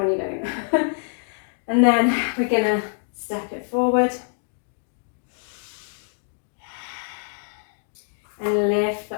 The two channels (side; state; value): right; silent; digital silence